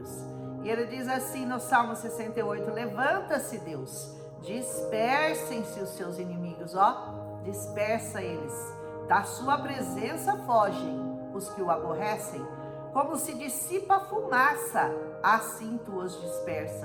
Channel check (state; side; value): identical; both; correlation 1.00